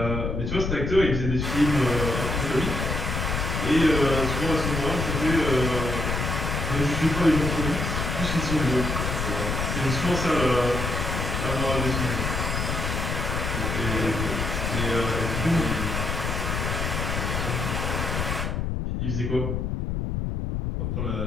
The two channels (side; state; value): left; noise; rumble, 1 dB below the sound